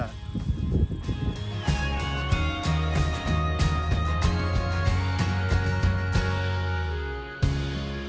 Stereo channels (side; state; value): both; identical; correlation 1.00